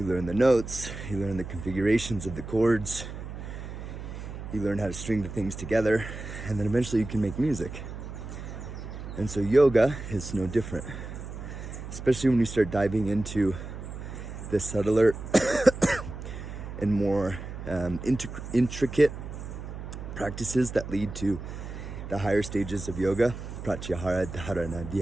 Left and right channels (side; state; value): right; noise; hum, 9 dB below the sound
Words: learn the notes, you learn the configurations of the chords, you learn how to string the things together, and then eventually you can make music. And so yoga is no different, especially when you start diving into the subtler and more intricate practices that lead to the higher stages of yoga: pratyahara, dharana,